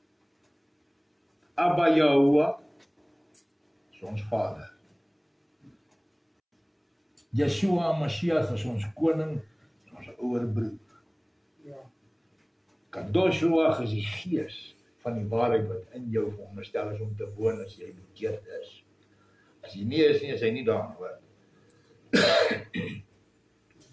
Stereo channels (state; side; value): identical; both; correlation 1.00